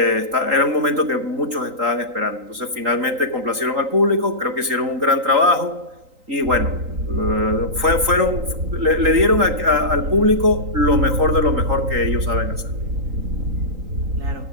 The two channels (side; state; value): left; late; 3.8 ms